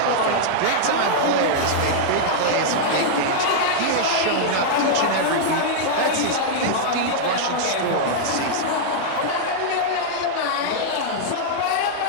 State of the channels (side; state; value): both; different; correlation -0.02